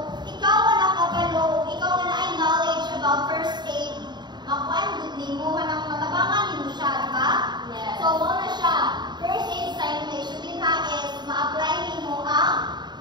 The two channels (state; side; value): late; left; 0.21 ms